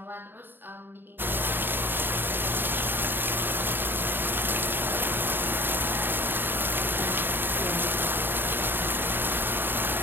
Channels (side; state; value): left; late; 0.096 ms